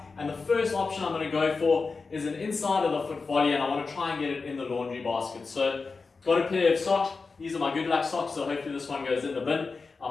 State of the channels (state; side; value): quieter; right; 4.4 dB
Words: And the first option I'm going to go for is an inside of the foot volley, and I want to try and get it in the laundry basket. So got a pair of socks. These are my good luck socks, so hopefully this one goes in the bin. I'm